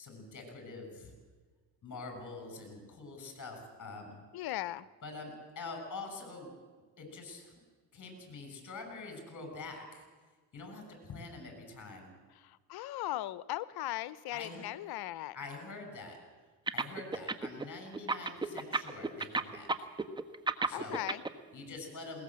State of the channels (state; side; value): normal; both; correlation 0.03